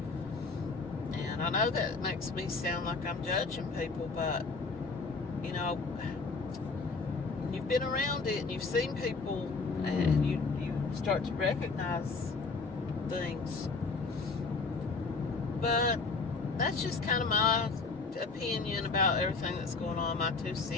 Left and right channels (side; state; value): right; quieter; 4.2 dB